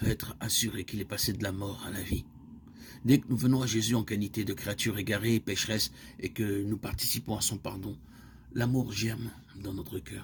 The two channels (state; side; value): identical; both; correlation 1.00